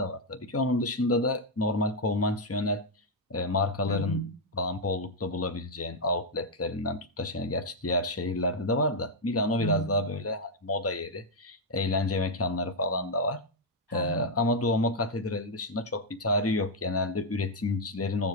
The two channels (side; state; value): both; normal; correlation -0.01